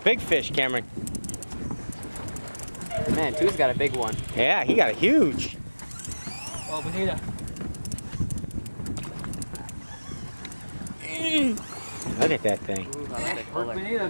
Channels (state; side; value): inverted; both; correlation -1.00